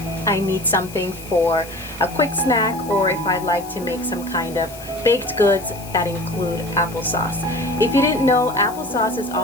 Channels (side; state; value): left; noise; hiss, 17 dB below the sound